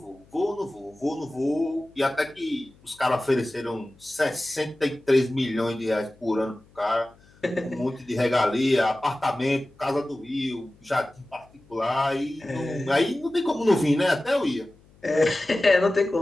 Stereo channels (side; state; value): left; noise; hum, 28 dB below the sound